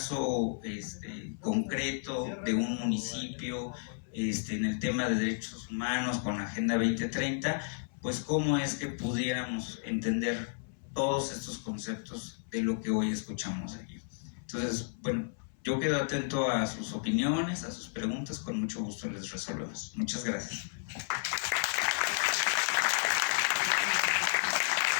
concreto de un municipio en el tema de derechos humanos con la Agenda 2030, pues cómo es que pudiéramos entender todos estos conceptos de lo que hoy escuchamos aquí. Entonces, bueno, yo quedo atento a sus opiniones, a sus preguntas, con mucho gusto les resolvemos. Muchas gracias.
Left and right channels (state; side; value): silent; right; 56 dB below the other